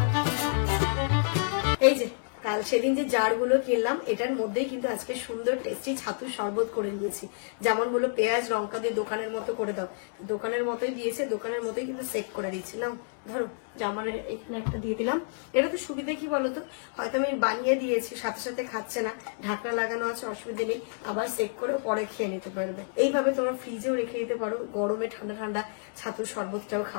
এই যে কাল সেদিন যে জারগুলো কিনলাম, এটার মধ্যেই কিন্তু আজকে সুন্দর টেস্টি ছাতুর শরবত করে নিয়েছি। যেমন বললো পেঁয়াজ লঙ্কা দিয়ে দোকানের মতো করে দাও, দোকানের মতোই দিয়েছে, দোকানের মতোই কিন্তু সেক করে দিচ্ছিলাম। ধরো জামার এখানে একটা দিয়ে দিলাম। এটা তো সুবিধা কি বলতো, হয়তো আমি বানিয়ে দিয়েছি, সাথে সাথে খাচ্ছে না, ঢাকনা লাগানো আছে, অসুবিধা নেই, আবার সেক করে পরে খেয়ে নিতে পারবে। এইভাবে তোমরা ফ্রিজেও রেখে দিতে পারো, গরমে ঠান্ডা ঠান্ডা ছাতুর শরবতটাও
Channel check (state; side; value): silent; right; 58 dB below the other